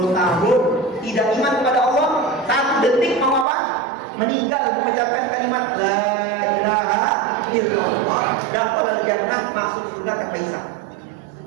tahun tidak iman kepada Allah, 1 detik mau apa? Meninggal mengucapkan kalimat la ilaha illallah, dakhala jannah, masuk surga tanpa hisab.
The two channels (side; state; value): left; drops out; at 3.5 s